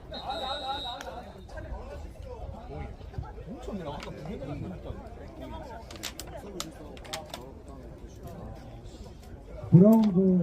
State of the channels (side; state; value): both; identical; correlation 1.00